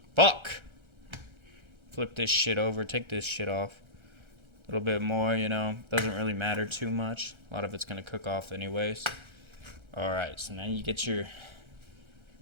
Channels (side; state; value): left; late; 1.3 ms